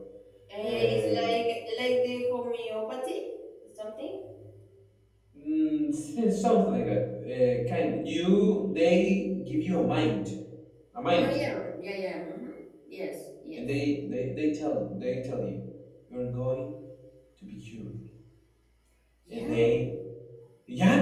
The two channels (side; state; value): both; identical; correlation 1.00